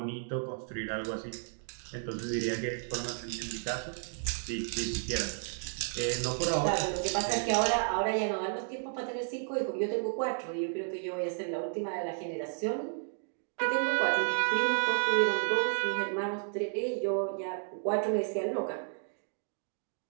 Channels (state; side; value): silent; left; digital silence